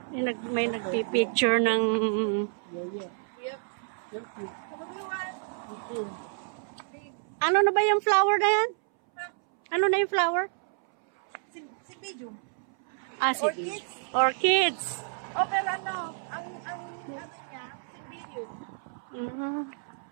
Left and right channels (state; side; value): silent; left; 58 dB below the other